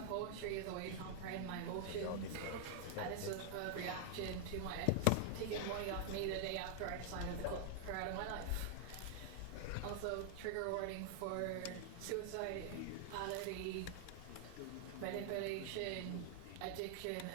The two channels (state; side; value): different; both; correlation 0.00